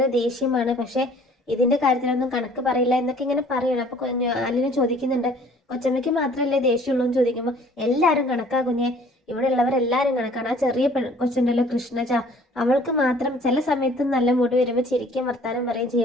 ദേഷ്യമാണ്, പക്ഷെ ഇതിന്റെ കാര്യത്തിലൊന്നും കണക്ക് പറയില്ല എന്നൊക്കെ ഇങ്ങനെ പറയണം. അപ്പൊ അലീന ചോദിക്കുന്നുണ്ട്, കൊച്ചമ്മയ്ക്ക് മാത്രമല്ലേ ദേഷ്യമുള്ളൂ എന്ന് ചോദിക്കുമ്പോൾ എല്ലാവരും കണക്കാ കുഞ്ഞെ, ഇവിടെ ഉള്ളവരെല്ലാവരും കണക്കാണ്. ആ ചെറിയ കൊച്ചുണ്ടല്ലോ കൃഷ്ണജ, അവൾക്ക് മാത്രം ചില സമയത്ത് നല്ല മൂഡ് വരുമ്പോൾ ചിരിക്കും വർത്താനം പറയുകയും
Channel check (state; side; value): normal; both; correlation 0.54